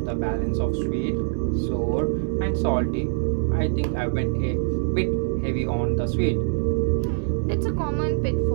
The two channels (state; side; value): silent; left; digital silence